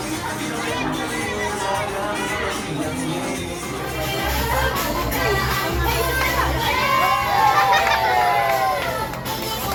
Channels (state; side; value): identical; both; correlation 1.00